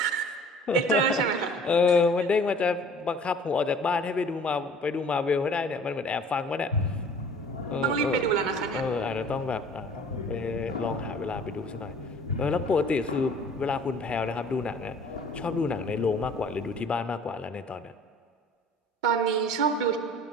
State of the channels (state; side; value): normal; both; correlation 0.49